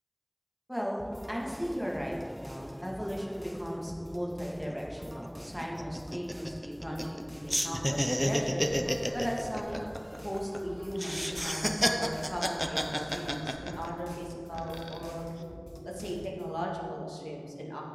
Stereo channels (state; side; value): identical; both; correlation 1.00